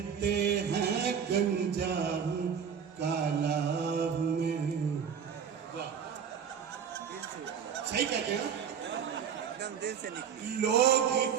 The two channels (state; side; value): quieter; left; 7.5 dB